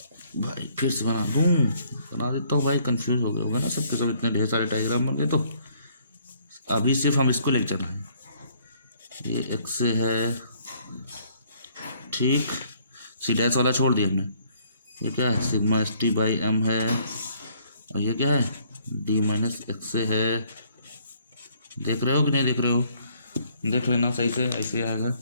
भाई, फिर से बना देता हूँ भाई, कंफ्यूज हो गए होगा ना सबके सब, इतने ढेर सारे डायग्राम बन गए, तो अभी सिर्फ हम इसको लेकर चल रहे हैं, ये एक्स से है, ठीक। सी डैश वाला छोड़ दिया हमने। ये क्या है, sigma S T by m है, और ये क्या है, डी माइनस एक्स से है। देख रहे हो कि नहीं देख रहे हो, देख लेना सही से, ऐसे आएगा।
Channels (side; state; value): both; inverted; correlation -0.64